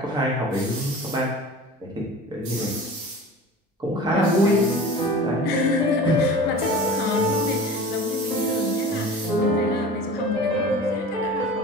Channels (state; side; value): normal; both; correlation 0.38